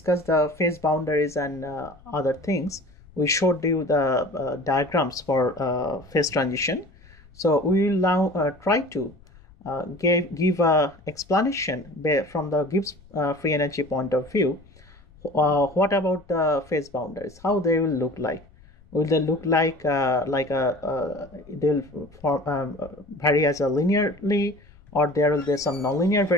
the phase boundaries and other things. We showed you the diagrams for phase transition. So we will now try to give a explanation from the Gibbs free energy point of view. What about the phase boundaries? How they will look like? Will they look like they'll vary as a linearly, or there will be some nonlinear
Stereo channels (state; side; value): noise; left; rumble, 25 dB below the sound